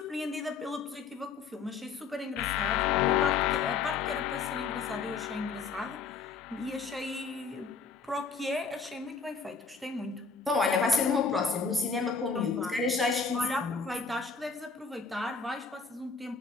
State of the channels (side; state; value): right; quieter; 5.0 dB